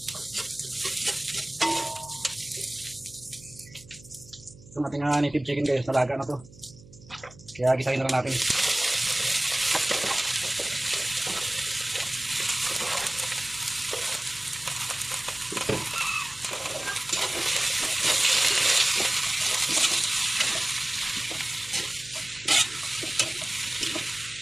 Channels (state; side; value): noise; right; hum, 21 dB below the sound